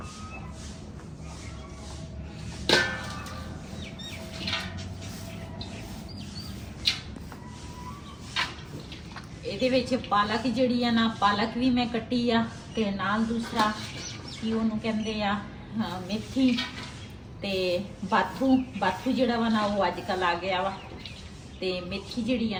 ਇਹਦੇ ਵਿੱਚ ਪਾਲਕ ਜਿਹੜੀ ਆ ਨਾ ਪਾਲਕ ਵੀ ਮੈਂ ਕੱਟੀ ਆ ਤੇ ਨਾਲ ਦੂਸਰਾ ਕੀ ਉਹਨੂੰ ਕਹਿੰਦੇ ਆ ਮੇਥੀ ਤੇ ਬਾਥੂ ਜਿਹੜਾ ਵਾ ਨਾ ਉਹ ਅੱਜ ਕੱਲ ਆ ਗਿਆ ਵਾ ਤੇ ਮੇਥੀ ਜਿਹੜੀ ਆ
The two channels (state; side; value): identical; both; correlation 1.00